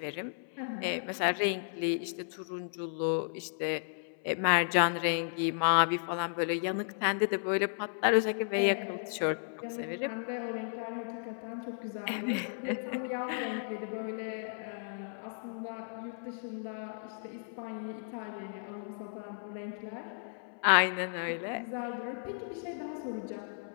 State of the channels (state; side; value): silent; right; 55 dB below the other